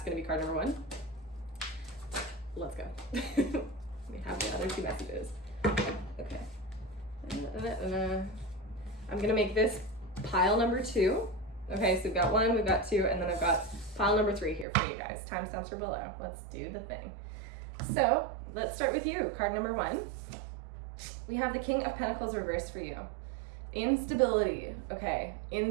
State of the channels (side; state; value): left; drops out; at 14.7 s